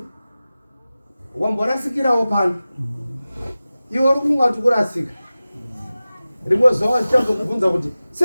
wamborasikirawo pano. Iwe uri kungati kurasika. Rimwe zuva zvichazokubvunza kuti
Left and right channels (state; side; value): inverted; both; correlation -0.96